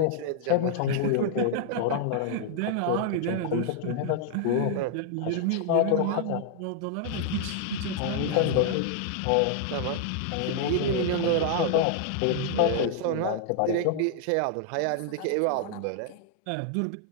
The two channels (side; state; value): both; different; correlation 0.00